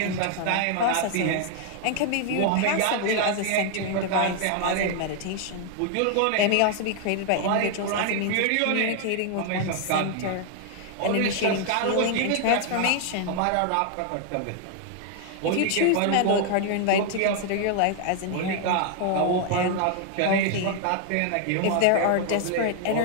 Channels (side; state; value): both; different; correlation 0.00